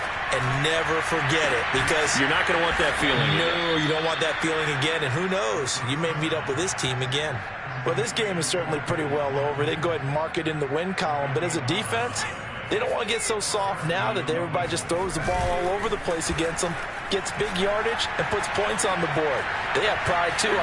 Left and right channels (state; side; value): identical; both; correlation 1.00